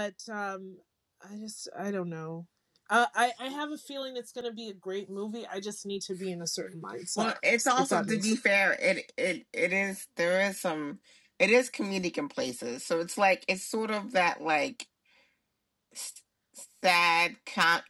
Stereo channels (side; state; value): both; identical; correlation 1.00